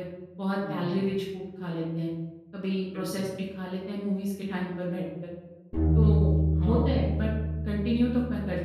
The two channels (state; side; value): identical; both; correlation 1.00